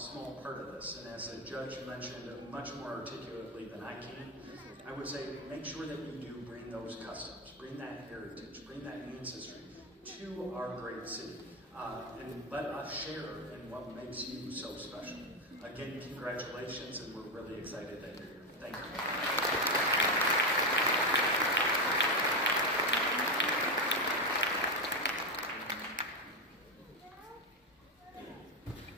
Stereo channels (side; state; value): both; normal; correlation 0.10